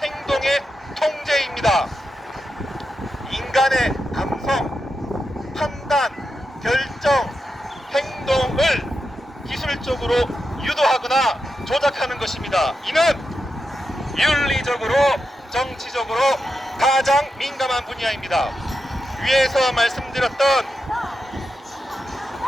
행동의 통제입니다. 인간의 감성, 판단, 결정, 행동을 기술적으로 유도하거나 조작하는 것입니다. 이는 윤리적으로, 정치적으로 가장 민감한 분야입니다. 위에서 말씀드렸던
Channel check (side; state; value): both; normal; correlation 0.87